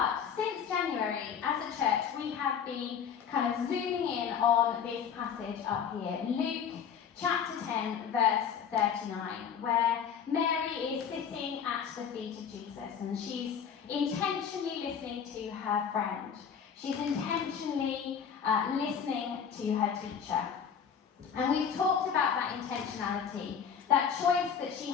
since January, as a church, we have been kind of zooming in on this passage up here, Luke chapter 10, verse 39, where Mary is sitting at the feet of Jesus and she's intentionally listening to her friend. She's intentionally listening to her teacher. And we've talked about that intentionality, that choice that she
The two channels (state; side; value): quieter; right; 7.5 dB